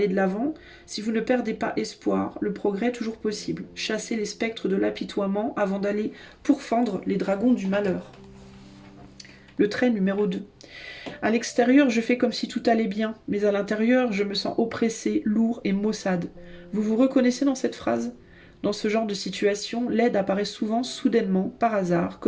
de l'avant, si vous ne perdez pas espoir, le progrès est toujours possible. Chassez les spectres de l'apitoiement avant d'aller pourfendre les dragons du malheur. Le trait numéro 2. À l'extérieur, je fais comme si tout allait bien, mais à l'intérieur, je me sens oppressé, lourd et maussade. Vous vous reconnaissez dans cette phrase ? Dans ce genre de situation, l'aide apparaît souvent soudainement, par hasard,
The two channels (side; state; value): both; identical; correlation 1.00